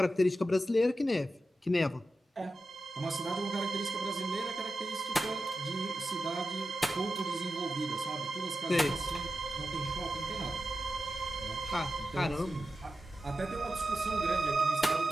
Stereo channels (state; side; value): normal; both; correlation 0.91